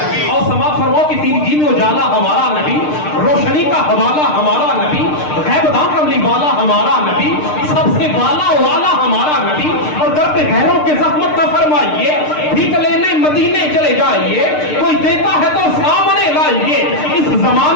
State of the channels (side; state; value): right; late; 6.6 ms